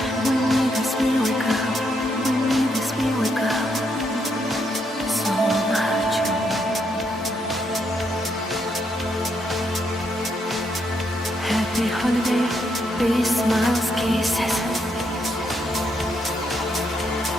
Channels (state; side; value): normal; both; correlation 0.77